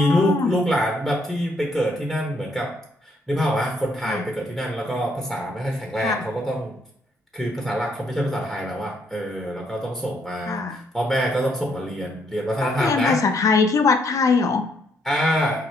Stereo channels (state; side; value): normal; both; correlation 0.72